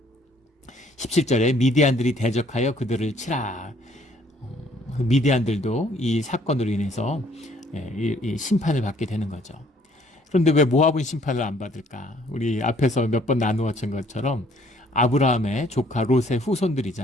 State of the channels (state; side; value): normal; both; correlation 0.61